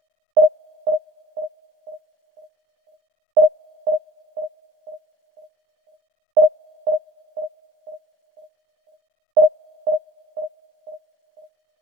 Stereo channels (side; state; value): left; late; 15 ms